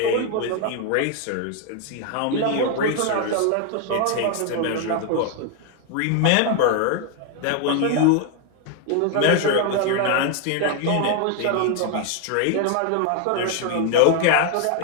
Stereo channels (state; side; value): different; both; correlation 0.01